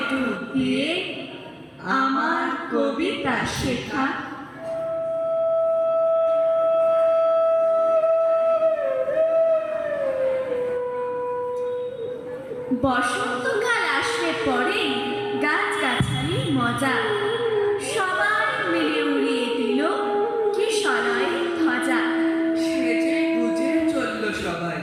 ডুব দিয়ে আমার কবিতা শেখা। বসন্তকাল আসলে পরে গাছগাছালির মজা, সবাই মিলে উড়িয়ে দিল কিশলয়ের ধ্বজা। সেজে গুজে চলল সবাই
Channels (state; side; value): identical; both; correlation 1.00